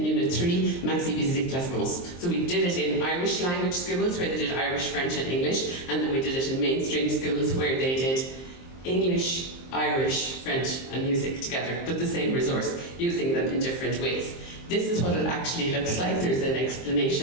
Unit 3, Maxi visite la France. So we did it in Irish language schools where they did Irish, French and English, and then we did it in mainstream schools where they did English, Irish, French and music together, but the same resource, using them in different ways. This is what it actually looks like. There's an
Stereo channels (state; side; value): late; right; 23 ms